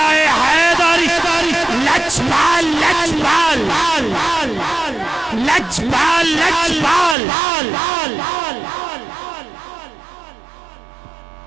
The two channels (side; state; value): left; drops out; at 7.2 s